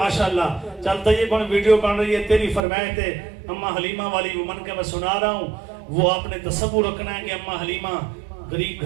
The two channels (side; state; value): left; drops out; at 2.6 s